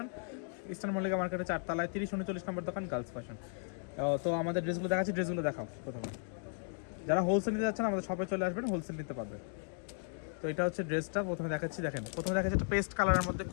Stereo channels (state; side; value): silent; right; 54 dB below the other